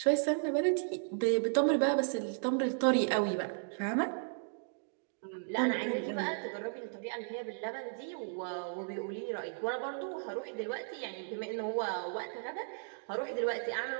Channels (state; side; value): silent; left; digital silence